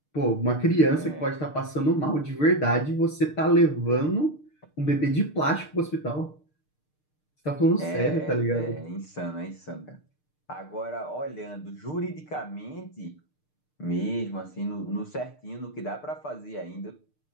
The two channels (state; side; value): late; right; 6.6 ms